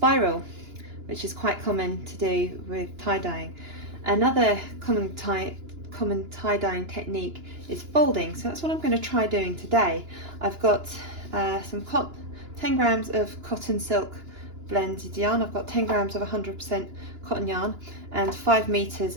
which is quite common to do with tie-dyeing. Another common tie-dyeing technique is folding, so that's what I'm going to try doing today. I've got 10 grams of cotton silk blended yarn. I've got 10 grams of 100% cotton yarn and 5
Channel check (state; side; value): late; left; 2.9 ms